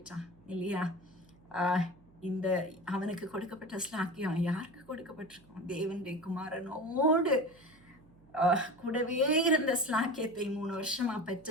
இல்லையா? இந்த அவனுக்கு கொடுக்கப்பட்ட ஸ்லாக்கியம் யாருக்கு கொடுக்கப்பட்டிருக்கும்? தேவனுடைய குமாரனோடு கூடவே இருந்த ஸ்லாக்கியத்தை 3 வருஷமா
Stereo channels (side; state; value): right; noise; hum, 28 dB below the sound